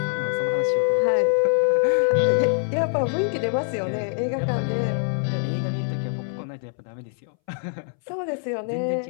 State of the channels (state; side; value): silent; right; 62 dB below the other